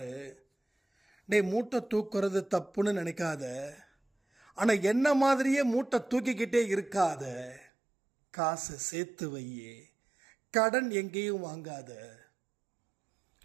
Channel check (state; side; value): drops out; left; at 7.7 s